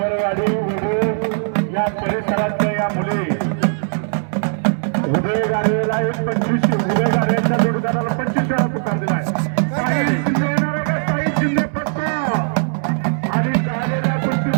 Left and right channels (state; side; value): silent; left; 66 dB below the other